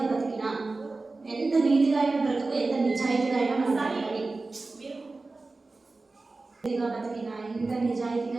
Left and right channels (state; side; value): quieter; left; 3.5 dB